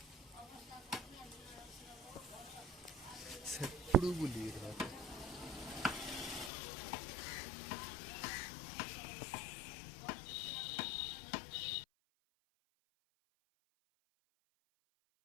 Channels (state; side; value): drops out; right; at 6.5 s